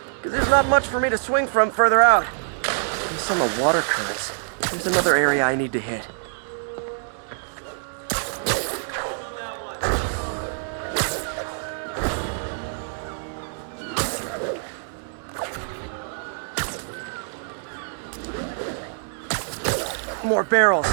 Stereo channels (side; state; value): left; silent; digital silence